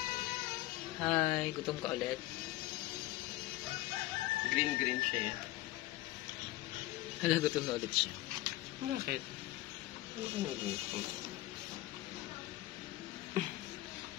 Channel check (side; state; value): right; quieter; 17.4 dB